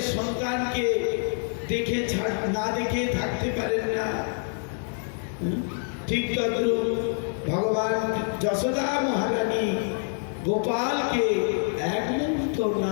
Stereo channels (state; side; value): silent; right; 60 dB below the other